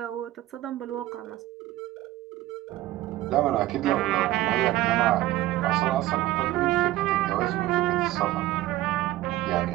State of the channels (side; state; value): left; quieter; 16.0 dB